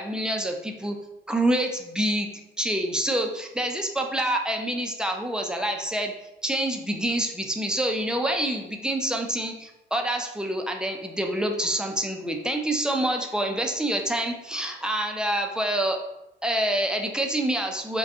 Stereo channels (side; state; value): both; normal; correlation 0.61